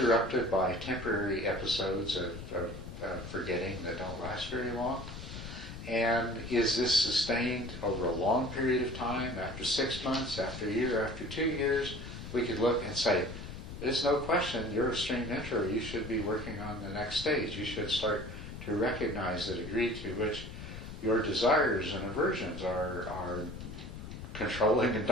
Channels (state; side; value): noise; left; rumble, 10 dB below the sound